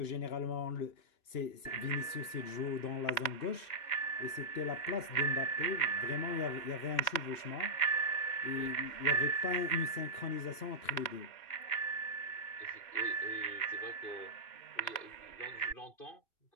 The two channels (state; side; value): late; right; 2.9 ms